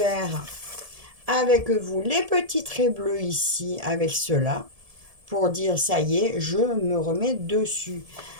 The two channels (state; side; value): late; left; 1.7 ms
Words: avec vous les petits traits bleus ici, avec cela, pour dire, ça y est, je me remets dessus.